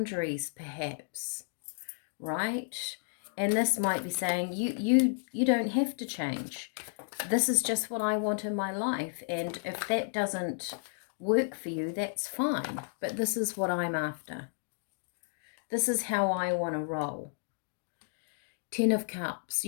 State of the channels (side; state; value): right; silent; digital silence